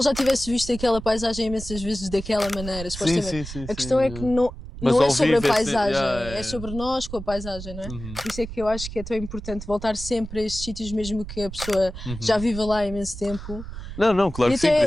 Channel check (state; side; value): noise; right; rumble, 11 dB below the sound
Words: já tivesse visto aquela paisagem imensas vezes daquela maneira, supostamente. A questão é que Mas não é ao sobre a vivo é paisagem, yeah, é sobre nós com a paisagem, não é? Uhum. Por isso é que eu acho que é tão importante voltar sempre a estes sítios, mesmo que a pessoa já Uhum. viva lá há imenso tempo. Não, claro E que sim, por até